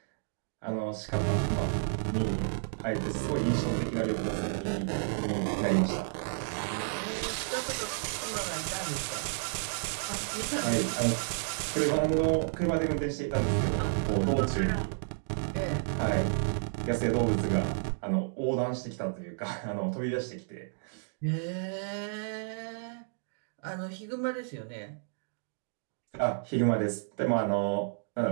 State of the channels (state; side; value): silent; left; digital silence